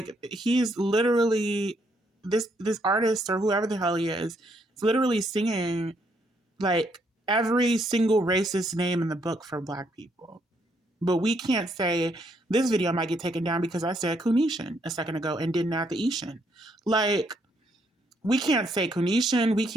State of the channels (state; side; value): normal; both; correlation 0.73